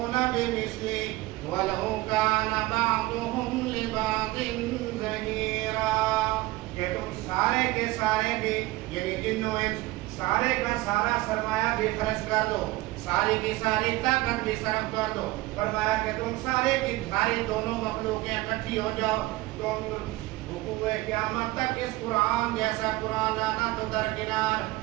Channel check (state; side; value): quieter; left; 19.3 dB